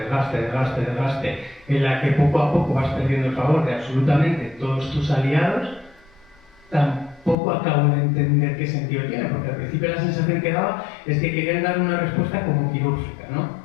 en la que poco a poco vas perdiendo el favor de absolutamente todos tus aliados, tampoco acabo de entender qué sentido tiene, porque al principio la sensación que daba es que querían dar una respuesta como quirúrgica, ¿no?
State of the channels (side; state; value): right; drops out; at 7.4 s